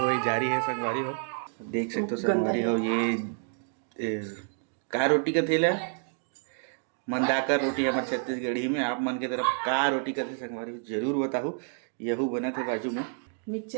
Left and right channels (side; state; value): left; silent; 59 dB below the other